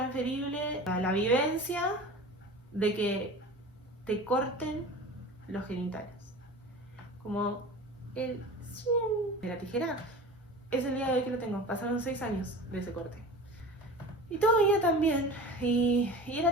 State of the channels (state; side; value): normal; both; correlation 0.36